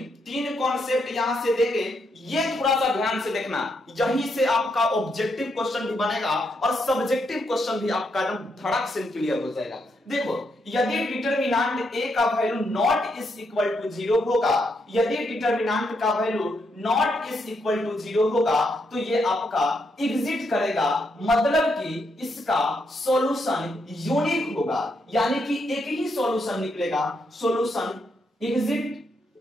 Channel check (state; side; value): normal; both; correlation 0.79